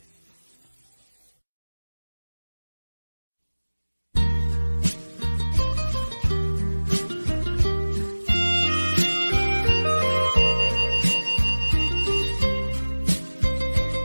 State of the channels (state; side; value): inverted; both; correlation -1.00